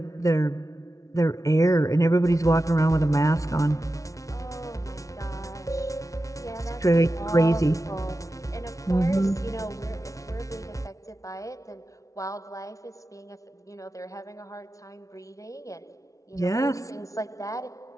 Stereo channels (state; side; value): late; right; 0.16 ms